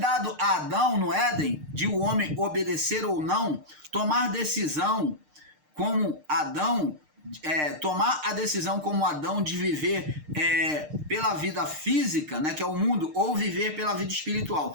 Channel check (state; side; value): late; left; 6.6 ms